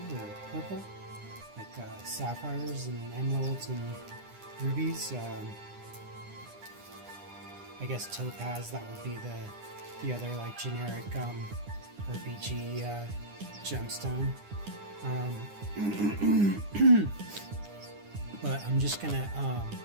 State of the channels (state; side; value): late; left; 9.9 ms